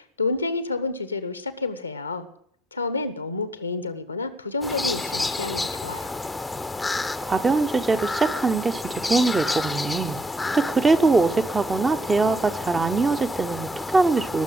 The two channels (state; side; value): normal; both; correlation 0.69